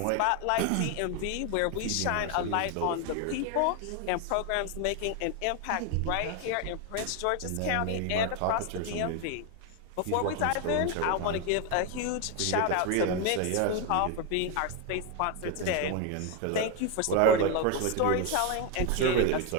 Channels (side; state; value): both; different; correlation 0.01